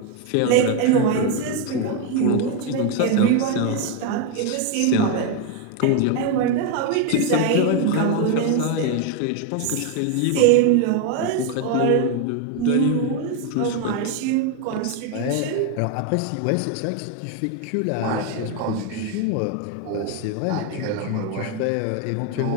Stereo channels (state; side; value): different; both; correlation 0.01